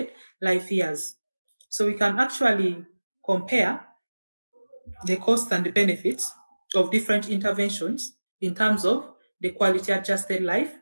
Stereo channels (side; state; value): both; inverted; correlation -1.00